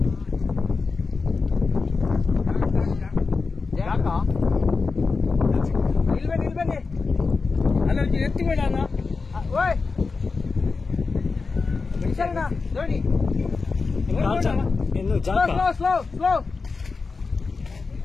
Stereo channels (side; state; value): right; quieter; 4.4 dB